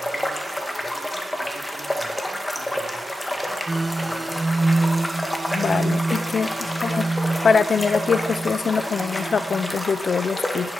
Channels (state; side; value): normal; both; correlation 0.90